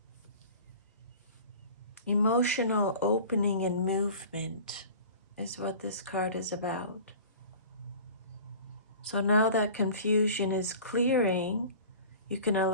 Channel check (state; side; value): inverted; both; correlation -0.41